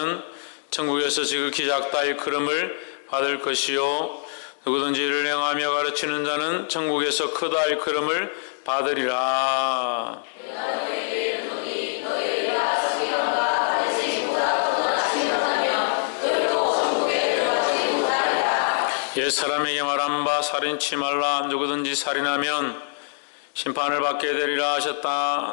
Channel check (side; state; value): right; silent; digital silence